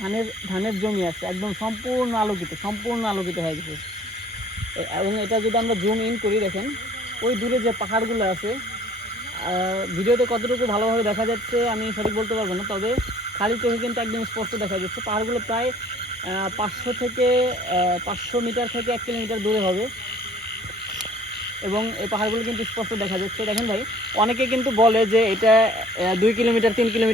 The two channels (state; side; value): normal; both; correlation 0.54